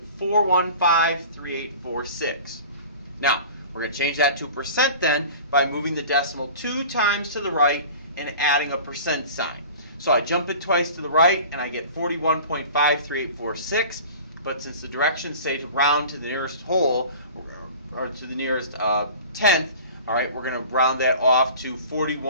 Now, we're going to change that to percent then by moving the decimal 2 times to the right and adding a percent sign. So I jump it twice to the right and I get 41.53846. But since the directions say to round to the nearest whole, or to the nearest tenth, all right, we're going to round that off to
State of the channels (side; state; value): both; inverted; correlation -0.41